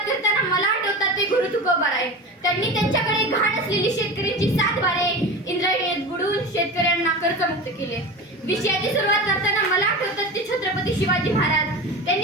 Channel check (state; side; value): normal; both; correlation 0.29